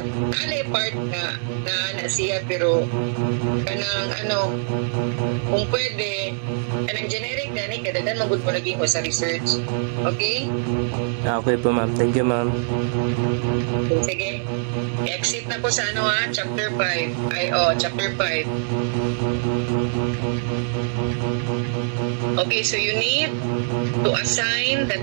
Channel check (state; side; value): silent; left; digital silence